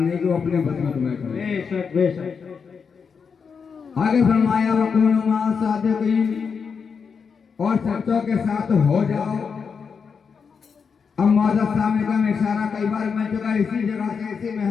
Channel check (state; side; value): quieter; right; 6.0 dB